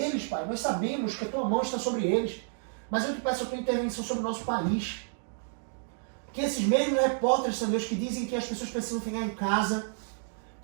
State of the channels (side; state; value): left; silent; digital silence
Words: Pai. Nós sabemos que a Tua mão está sobre eles, mas eu te peço a Tua intervenção sobre o nosso país. Que esses mesmos repórteres, Senhor Deus, que dizem que as pessoas precisam ficar em casa,